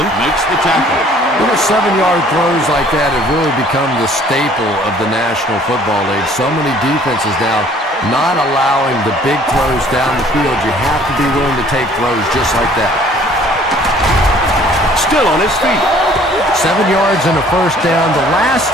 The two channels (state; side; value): normal; both; correlation 0.56